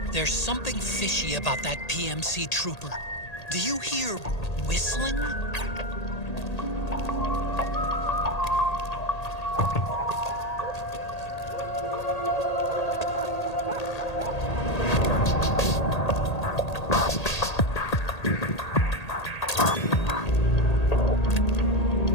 There's something fishy about that PMC trooper. Do you hear whistling?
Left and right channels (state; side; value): late; right; 1.8 ms